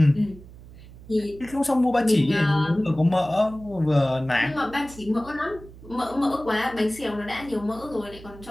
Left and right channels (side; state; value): right; noise; hum, 19 dB below the sound